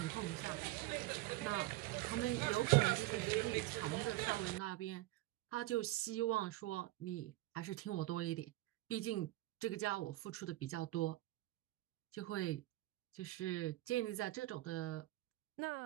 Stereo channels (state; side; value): quieter; left; 18.0 dB